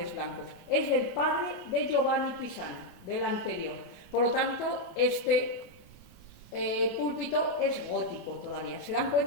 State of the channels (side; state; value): right; late; 28 ms